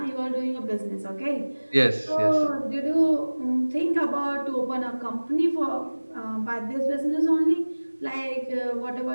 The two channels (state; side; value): inverted; both; correlation -1.00